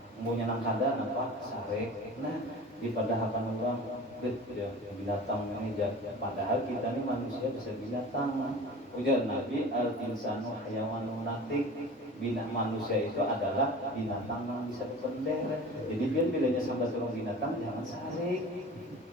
Mau nyenang kada apa sare. Nah, di padahakan orang ya, binatang ini padahal kita ini manusia bisa binatang. Ujar Nabi al-insanu hayawanun natik. Bina manusia itu adalah binatang yang bisa dipendek. Jadi biar bilanya sampai turun binatang jangan sarik.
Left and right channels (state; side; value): normal; both; correlation 0.38